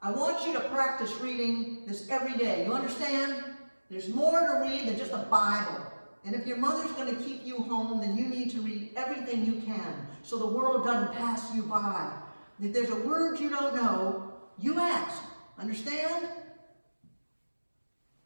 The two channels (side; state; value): both; inverted; correlation -1.00